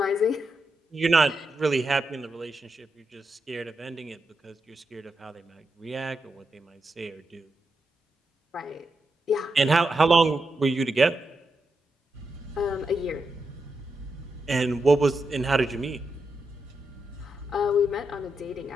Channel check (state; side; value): normal; both; correlation 0.85